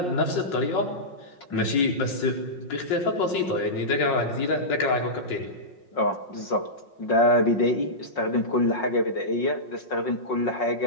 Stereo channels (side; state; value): right; late; 5.5 ms